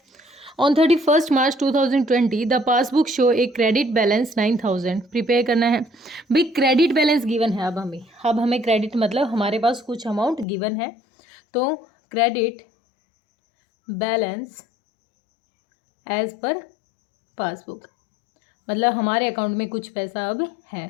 On 31 March 2020 the passbook show a credit balance 9000। Prepare करना है भाई, क्रेडिट बैलेंस गिवन है। अब हमें क्रेडिट मतलब हमारे पास कुछ अमाउंट गिवन है, तो credit balance as per passbook मतलब हमारे अकाउंट में कुछ पैसा अब है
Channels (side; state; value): right; drops out; at 10.5 s